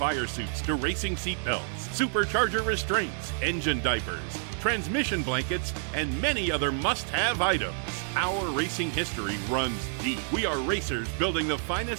suits to racing seat belts, supercharger restraints, engine diapers, transmission blankets, and many other must-have items. Our racing history runs deep. We are racers building the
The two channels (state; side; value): silent; left; digital silence